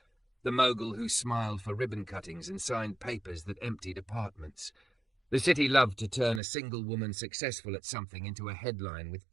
the Mogul who smiled for ribbon cuttings and signed papers that emptied apartments. The city loved to turn a single woman successful at something into a headline with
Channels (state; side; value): drops out; left; at 6.4 s